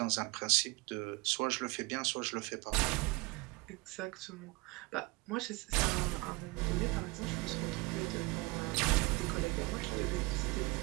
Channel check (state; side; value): quieter; left; 25.6 dB